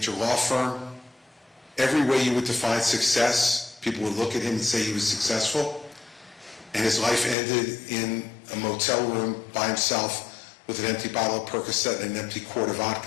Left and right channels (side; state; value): right; drops out; at 7.4 s